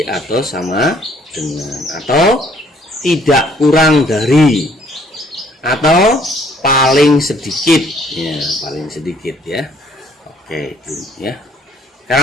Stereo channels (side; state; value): both; normal; correlation 0.62